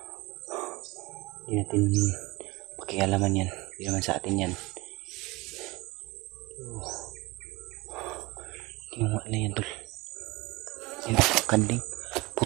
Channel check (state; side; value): quieter; left; 22.6 dB